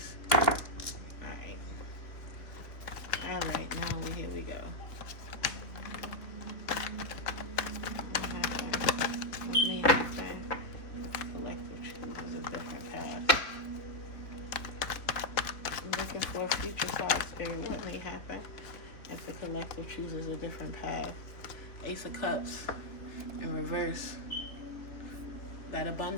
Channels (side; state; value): right; late; 3.2 ms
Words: Alright. Alright, now here we go. What may happen? The collective chooses a different path. Looking for a future card, Spirit. What may happen if the collective chooses a different path? Ace of Cups in reverse. That